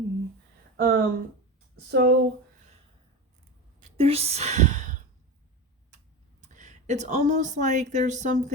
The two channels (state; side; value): normal; both; correlation 0.24